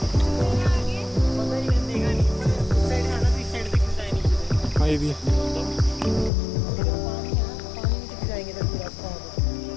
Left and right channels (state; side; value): drops out; right; at 6.3 s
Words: हाँ ये भी है।